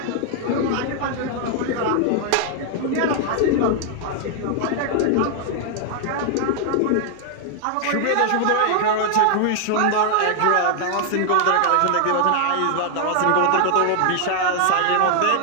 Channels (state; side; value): different; both; correlation 0.00